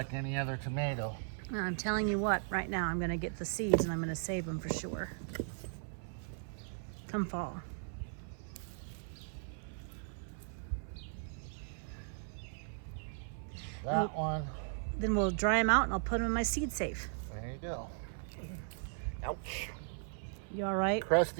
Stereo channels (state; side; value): silent; left; 53 dB below the other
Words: any other tomato. I'm telling you what, right now I'm gonna get the seeds and I'm gonna save them for sure. Come fall. that one. Then we'll dry them out and I'll put them in my seed safe. There you go. Ouch. You all right?